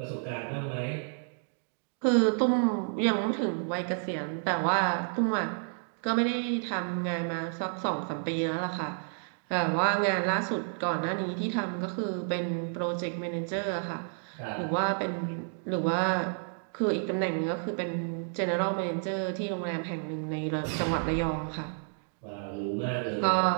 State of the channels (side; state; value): left; silent; 57 dB below the other